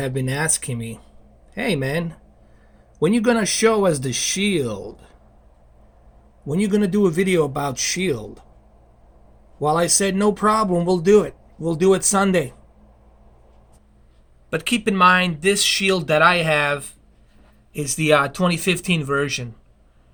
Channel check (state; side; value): identical; both; correlation 1.00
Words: been asking me, hey man, when you gonna show us the Shield? When you gonna do a video about Shield? Well, I said no problem, we'll do it. We'll do it Sunday. But keep in mind, this Shield that I have is the 2015 version,